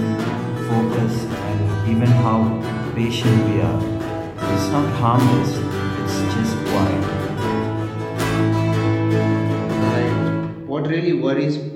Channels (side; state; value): both; identical; correlation 1.00